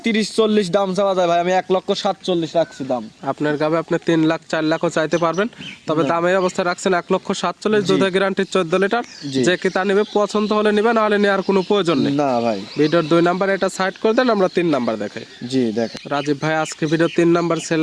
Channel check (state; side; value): identical; both; correlation 1.00